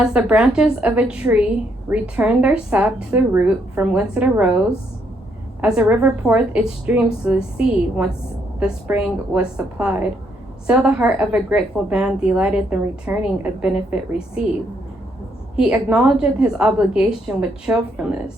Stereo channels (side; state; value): both; normal; correlation 0.73